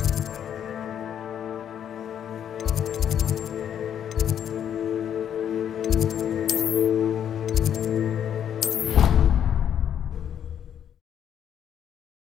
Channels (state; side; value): quieter; right; 9.3 dB